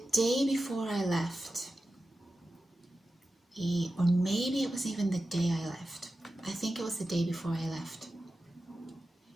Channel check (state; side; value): normal; both; correlation 0.93